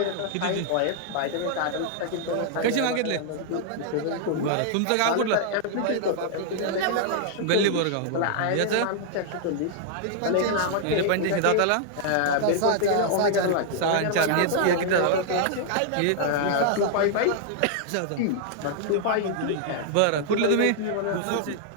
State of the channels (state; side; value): different; both; correlation 0.00